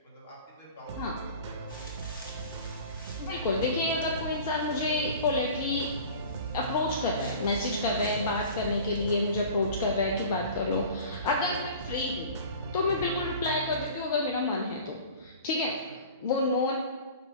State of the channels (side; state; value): both; inverted; correlation -0.41